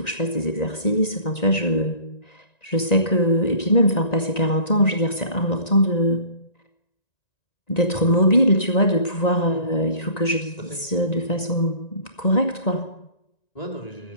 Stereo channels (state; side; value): late; right; 1.9 ms